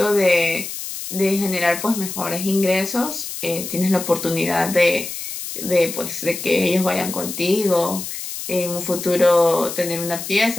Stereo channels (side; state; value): left; noise; hiss, 8 dB below the sound